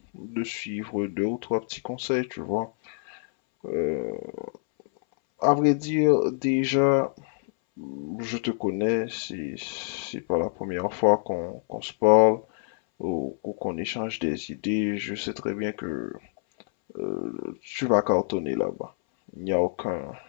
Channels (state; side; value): silent; right; 60 dB below the other